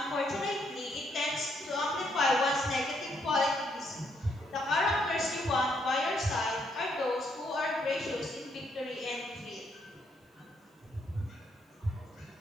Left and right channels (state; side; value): normal; both; correlation 0.74